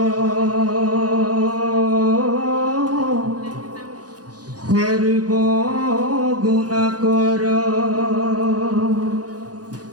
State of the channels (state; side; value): late; left; 0.68 ms